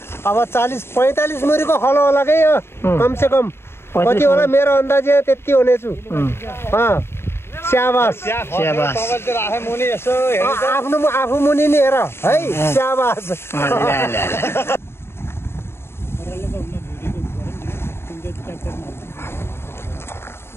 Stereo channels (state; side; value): late; right; 0.12 ms